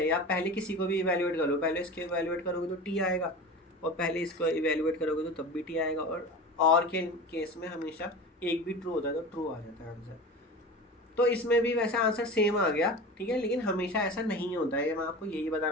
आप पहले किसी को भी इवेल्युएट करो, पहले इसके इवेल्युएट करोगे तो टी आएगा, और पहले इसको इवेल्युएट करोगे तो तब भी टी आएगा, और के केस में हमेशा एक भी ट्रू होता है तो ट्रू आ जाता है आंसर। तो इसमें भी वैसे आंसर सेम आ गया, ठीक है, लेकिन हमेशा ऐसा नहीं होता है, मैं आपको यही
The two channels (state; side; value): normal; both; correlation 0.32